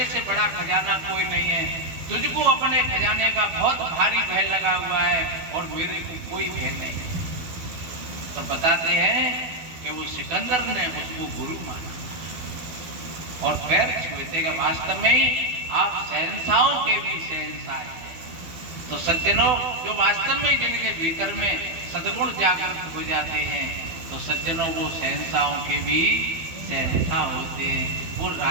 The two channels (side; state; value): left; late; 12 ms